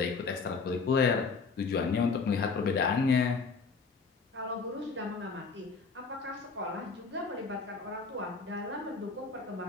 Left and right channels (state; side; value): quieter; right; 4.8 dB